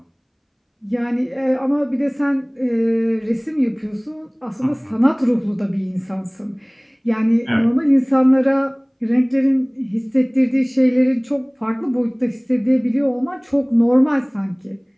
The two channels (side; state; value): both; identical; correlation 1.00